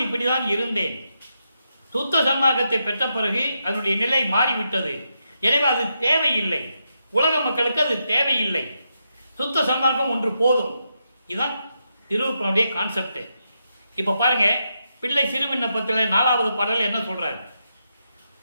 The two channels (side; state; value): both; inverted; correlation -0.83